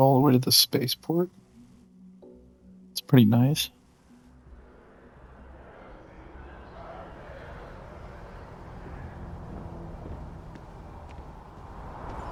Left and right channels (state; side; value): identical; both; correlation 1.00